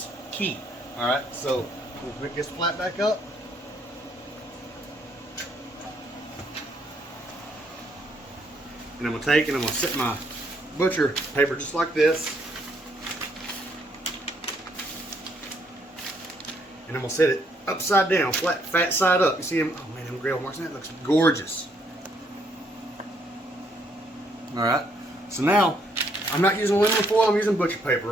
key. All right, so we'll pick this flat back up. And I'm going to take and I'm going to set my butcher paper just like this. And I'm going to set it upside down, flat, fat side up. You see them? Oh man, them grill marks. That looks gorgeous. Alright, so now I'm not using aluminum foil, I'm using butcher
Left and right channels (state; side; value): normal; both; correlation 0.70